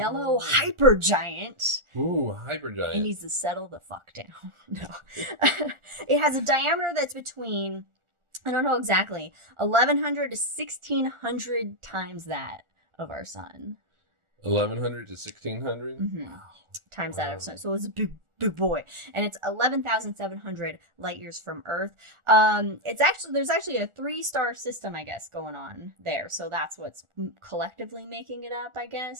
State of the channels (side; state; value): left; late; 1.4 ms